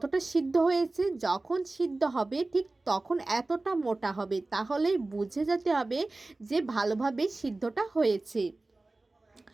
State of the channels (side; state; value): left; quieter; 3.1 dB